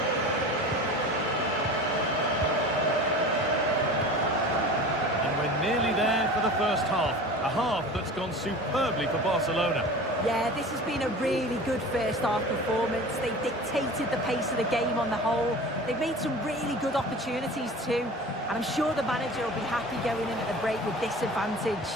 And we're nearly there for the first half. A half that's gone superbly for Barcelona. Yeah, this has been a really good first half performance. They dictated the pace of the game on the whole. They've made some really good opportunities too. And I'm sure the manager will be happy going in at the break with this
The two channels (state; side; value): normal; both; correlation 0.37